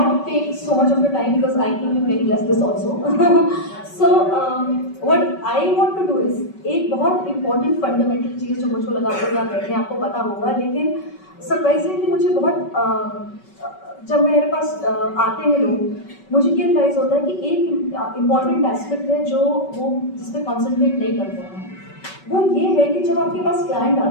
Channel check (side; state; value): right; late; 5.3 ms